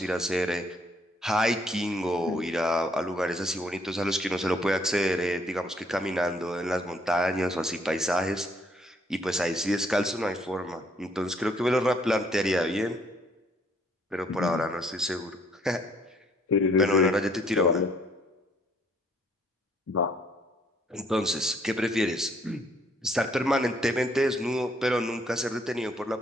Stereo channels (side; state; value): both; normal; correlation 0.65